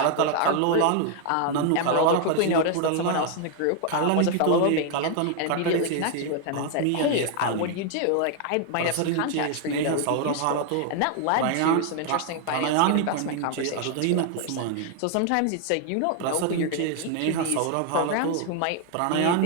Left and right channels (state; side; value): different; both; correlation 0.00